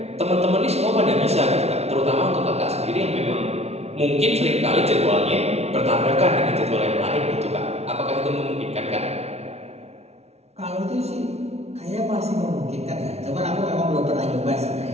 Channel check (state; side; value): late; left; 0.31 ms